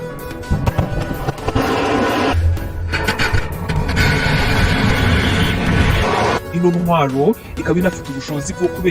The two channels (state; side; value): identical; both; correlation 1.00